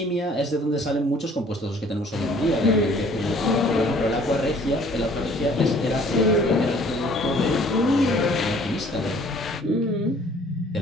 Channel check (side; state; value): both; normal; correlation 0.55